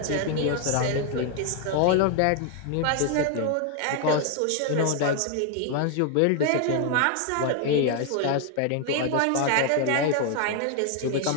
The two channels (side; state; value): both; different; correlation 0.01